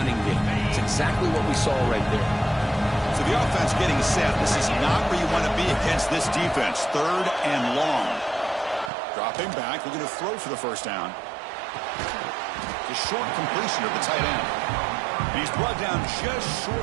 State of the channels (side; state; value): left; drops out; at 8.9 s